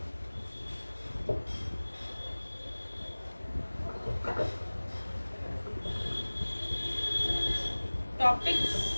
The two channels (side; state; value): both; inverted; correlation -1.00